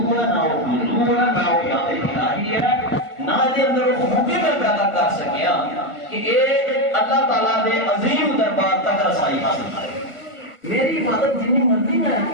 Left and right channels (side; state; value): right; late; 1.4 ms